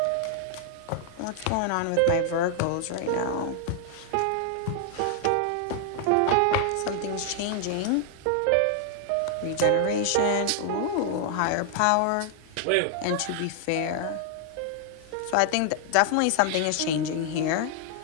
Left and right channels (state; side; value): different; both; correlation 0.00